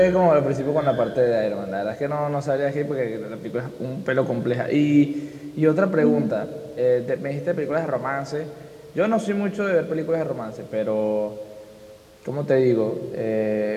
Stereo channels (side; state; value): both; identical; correlation 1.00